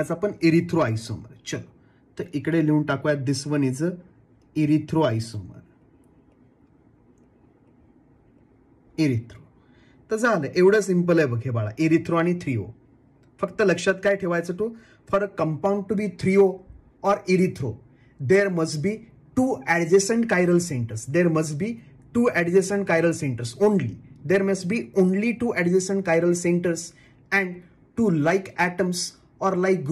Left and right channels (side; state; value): both; identical; correlation 1.00